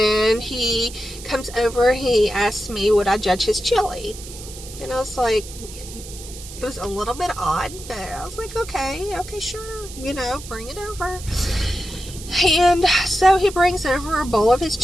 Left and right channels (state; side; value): noise; right; hiss, 14 dB below the sound